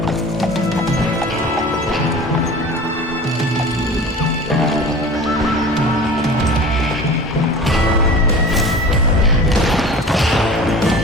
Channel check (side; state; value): both; normal; correlation 0.39